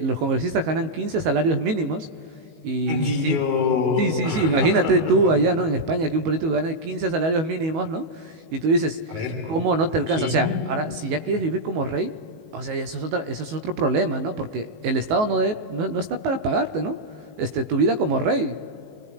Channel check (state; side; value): late; left; 19 ms